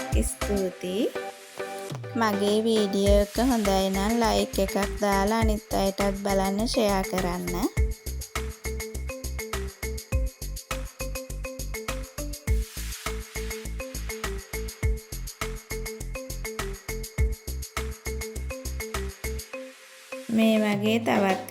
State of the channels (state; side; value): identical; both; correlation 1.00